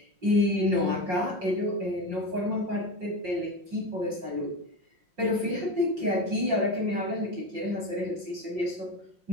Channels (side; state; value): left; late; 5.5 ms